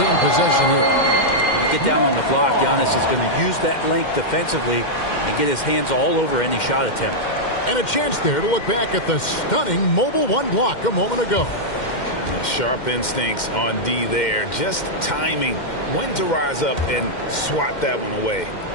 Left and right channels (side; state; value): right; late; 2.1 ms